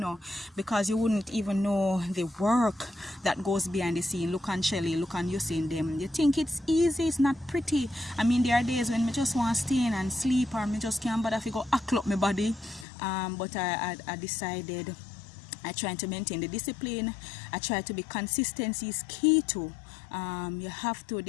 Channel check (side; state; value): right; drops out; at 12.9 s